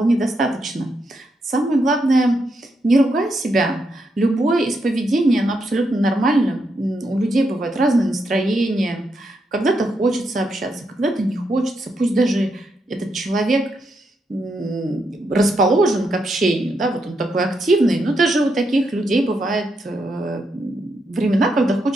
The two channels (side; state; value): both; normal; correlation 0.81